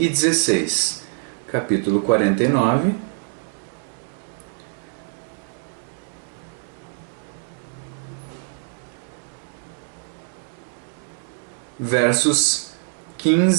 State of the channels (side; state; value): left; silent; 62 dB below the other